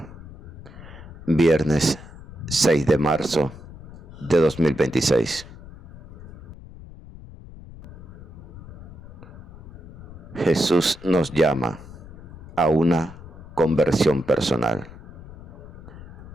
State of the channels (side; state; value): left; noise; rumble, 16 dB below the sound